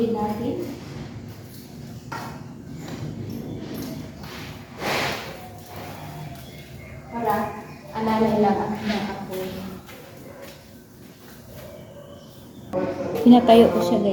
natin. Para alalay lang ang apoy. Pinatayo ko siya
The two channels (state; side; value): identical; both; correlation 1.00